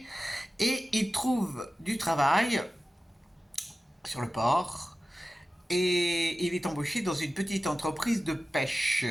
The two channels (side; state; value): both; normal; correlation 0.95